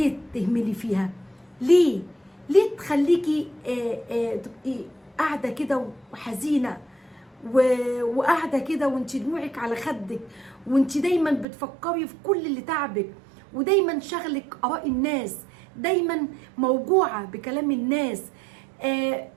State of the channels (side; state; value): left; drops out; at 11.5 s